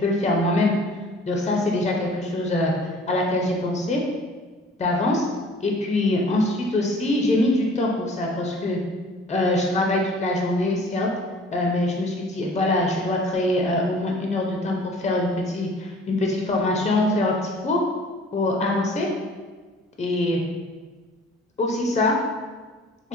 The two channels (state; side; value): normal; both; correlation 0.50